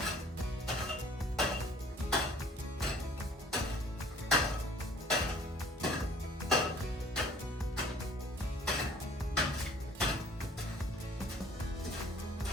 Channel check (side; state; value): both; normal; correlation 0.53